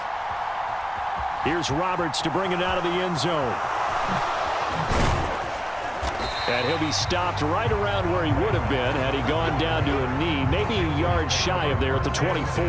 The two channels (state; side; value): identical; both; correlation 1.00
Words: Here's Roberts to bring it out of the end zone. And he'll be stopped right around where he would have been had he gone down to a knee, maybe a yard shy of there at the 24.